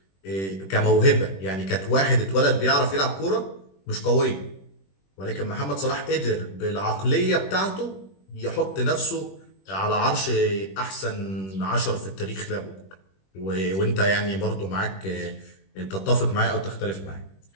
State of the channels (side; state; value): right; late; 21 ms